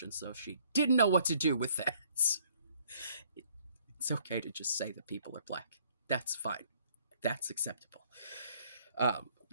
and so she didn't know what to do with that. It's okay to just say that people are black. That's fine. That's acceptable.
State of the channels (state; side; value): inverted; both; correlation -0.62